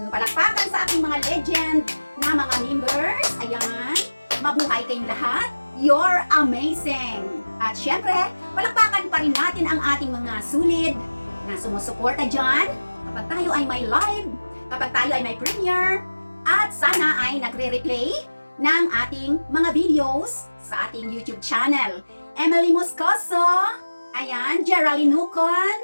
Palakpakan sa aking mga legend na mga members. Ayan, mabuhay kayong lahat. You're amazing! At syempre, palakpakan pa rin natin ang ating mga sulit na sumusuporta dyan kapag tayo ay may live, kapag tayo ay may premiere, at sana ay nagre-replay ng ating mga videos sa ating YouTube channel. Emily Moscoso, ayan, Geraldine Nucon,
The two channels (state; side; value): inverted; both; correlation -1.00